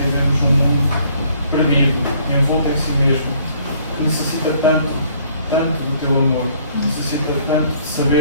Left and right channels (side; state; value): both; inverted; correlation -0.61